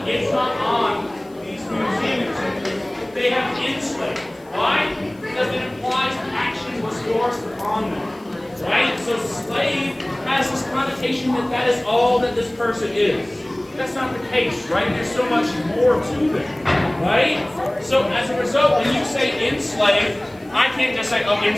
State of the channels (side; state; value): left; noise; hiss, 30 dB below the sound